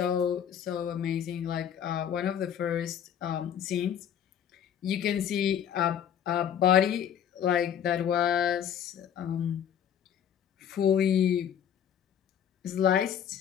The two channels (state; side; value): quieter; right; 9.1 dB